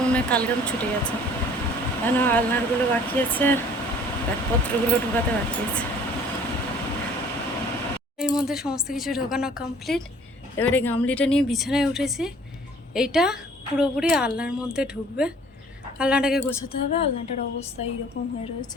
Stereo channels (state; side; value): normal; both; correlation 0.53